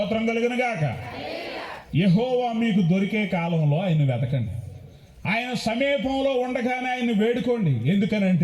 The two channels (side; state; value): both; identical; correlation 1.00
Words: కలుగునుగాక. యెహోవా మీకు దొరికే కాలంలో ఆయన వెతకండి, ఆయన సమీపంలో ఉండగానే ఆయన్ని వేడుకోండి.